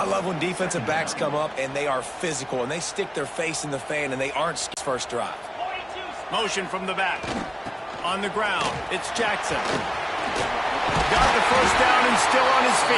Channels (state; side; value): identical; both; correlation 1.00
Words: love when defensive backs come up and they are physical and they stick their face in the fan and they aren't first drive. Motion from the back. On the ground, it's Jackson. Got the first down and still on his